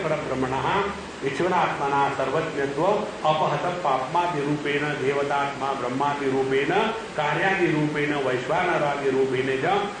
परब्रह्मणः ईश्वरात्मना सर्वज्ञत्व अपहत पाप्मादि रूपेण देवतात्मा ब्रह्मादि रूपेण कार्यादि रूपेण वैश्वानरादि रूपेण च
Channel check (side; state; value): both; identical; correlation 1.00